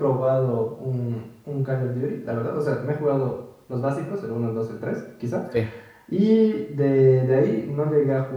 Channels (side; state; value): both; identical; correlation 1.00